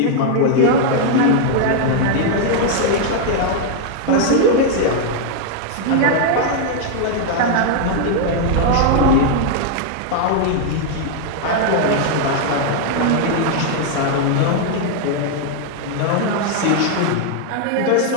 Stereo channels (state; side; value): different; both; correlation 0.00